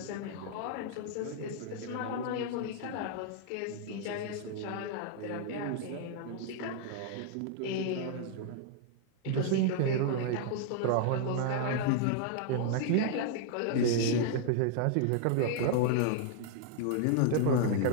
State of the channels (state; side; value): different; both; correlation 0.00